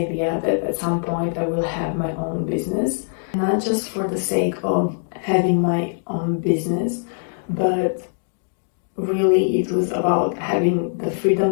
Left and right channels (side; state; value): right; silent; digital silence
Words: that at some point I will have my own business. Not just for the sake of having my own business, but really it was about having the